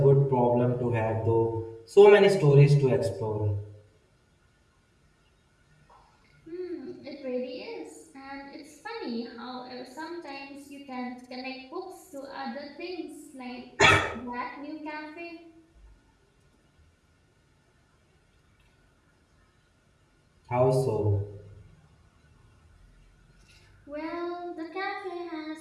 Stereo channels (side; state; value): both; identical; correlation 1.00